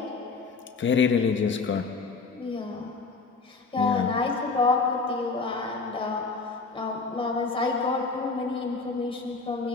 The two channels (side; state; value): right; quieter; 4.3 dB